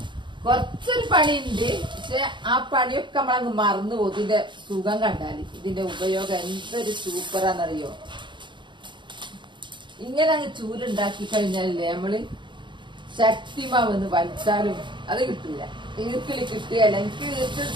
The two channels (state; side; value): late; left; 0.23 ms